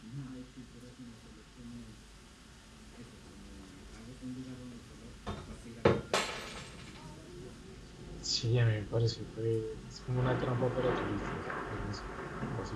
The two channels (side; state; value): both; identical; correlation 1.00